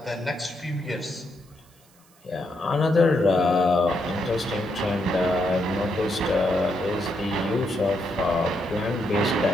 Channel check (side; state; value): right; noise; hiss, 30 dB below the sound